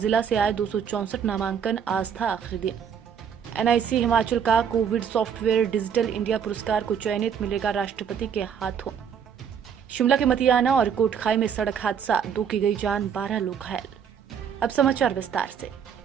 से आए 264 नामांकन, आज था आखिरी दिन। एनआईसी हिमाचल का कोविड सॉफ्टवेयर डिजिटल इंडिया पुरस्कार को चयनित मिलेगा राष्ट्रपति के हाथों। शिमला के मतियाना और कोटखाई में सड़क हादसा, 2 की गई जान, 12 लोग घायल। अब समाचार विस्तार से।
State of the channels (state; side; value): quieter; left; 7.7 dB